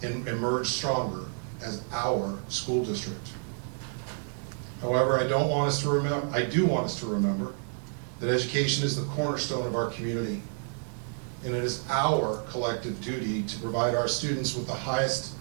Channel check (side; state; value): left; silent; 58 dB below the other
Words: and emerge stronger as our school district. However, I do want us to remember that education is the cornerstone of our community, and it is our collective duty to provide our students with the highest